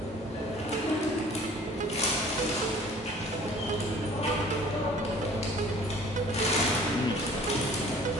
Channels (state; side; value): normal; both; correlation 0.50